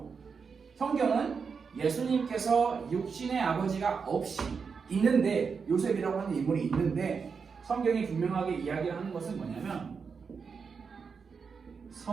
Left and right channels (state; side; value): quieter; left; 5.6 dB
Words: 성경은 예수님께서 육신의 아버지가 없이 있는데, 요셉이라고 하는 인물이 있는데, 성경이 분명하게 이야기를 하는 것은 뭐냐면